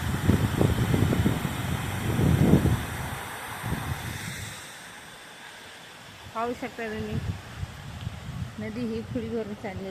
पाहू शकता तुम्ही, नदी ही फुल भरून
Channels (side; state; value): both; identical; correlation 1.00